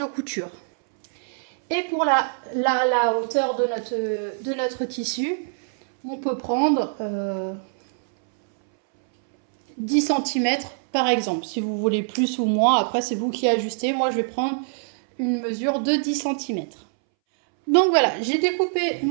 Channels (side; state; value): left; silent; 63 dB below the other